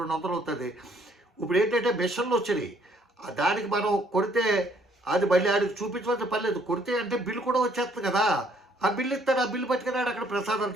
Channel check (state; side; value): normal; both; correlation 0.65